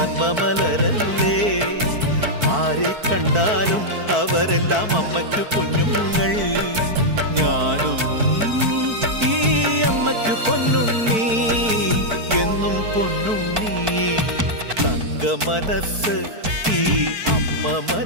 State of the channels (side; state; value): left; late; 4.5 ms